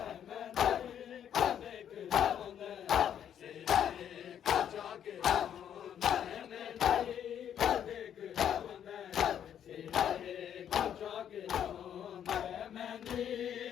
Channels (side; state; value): right; quieter; 9.4 dB